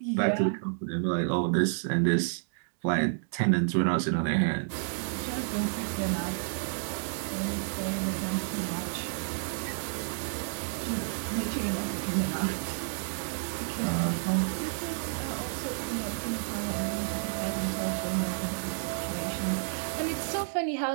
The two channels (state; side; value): silent; left; digital silence